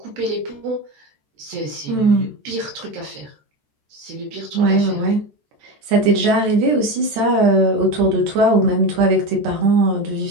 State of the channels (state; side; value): late; left; 13 ms